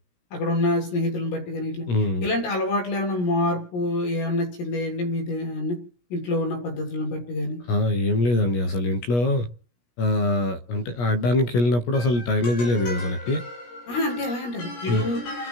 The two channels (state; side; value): late; right; 17 ms